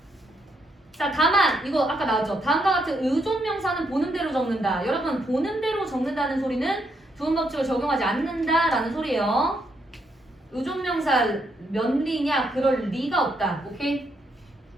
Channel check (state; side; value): normal; both; correlation 0.77